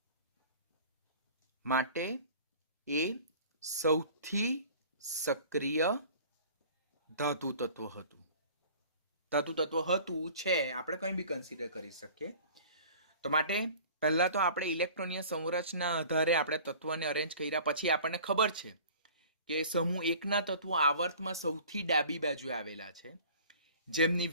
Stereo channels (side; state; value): both; inverted; correlation -0.46